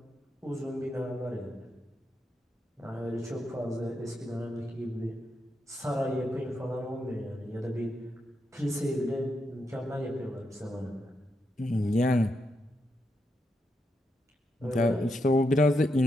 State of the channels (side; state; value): both; normal; correlation 0.83